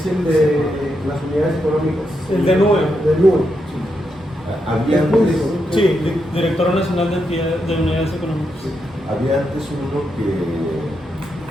el de las unidades económicas. El de nube. De nube, sí. Había Es antes, público, ¿no? Sí, Directora Nacional de Entidades de Unidades Económicas. había antes uno que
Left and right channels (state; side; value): normal; both; correlation 0.83